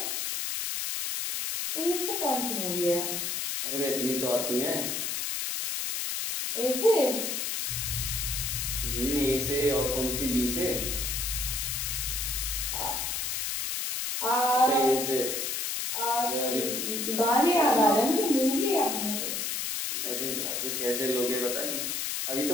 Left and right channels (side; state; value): left; noise; hiss, 1 dB below the sound